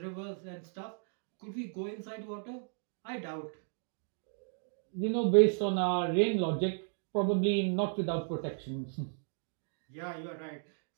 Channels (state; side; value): silent; left; 55 dB below the other